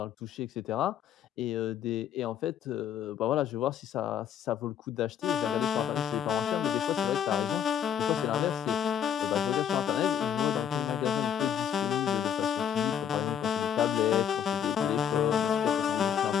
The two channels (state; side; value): quieter; right; 8.9 dB